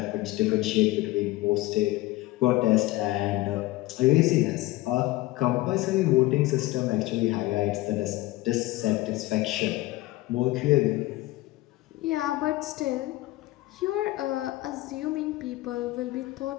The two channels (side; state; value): right; quieter; 18.4 dB